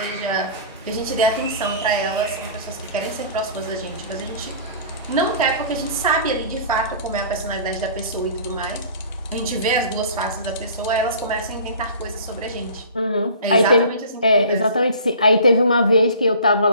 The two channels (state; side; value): inverted; both; correlation -0.43